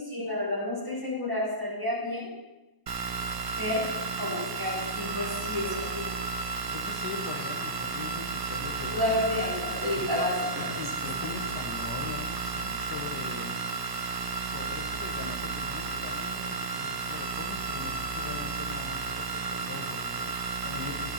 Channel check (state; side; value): late; left; 1.0 ms